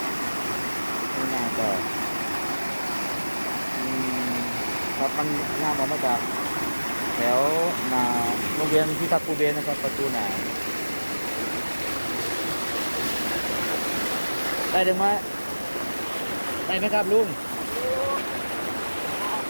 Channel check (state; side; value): inverted; both; correlation -1.00